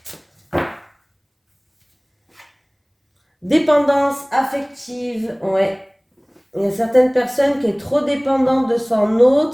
Dépendance affective, ouais. Il y a certaines personnes qui sont trop dépendantes de son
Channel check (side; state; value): both; identical; correlation 1.00